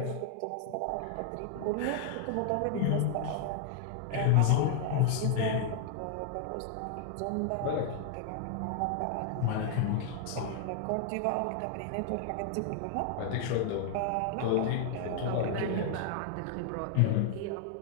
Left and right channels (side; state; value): both; different; correlation 0.00